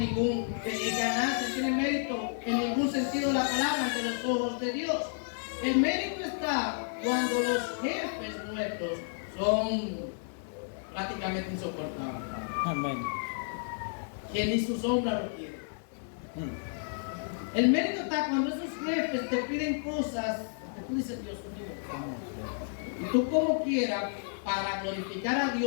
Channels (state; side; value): silent; right; digital silence